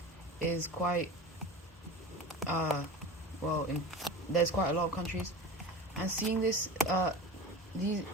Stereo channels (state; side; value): normal; both; correlation 0.31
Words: is quite, well, there's quite a lot of countries, and seeing this,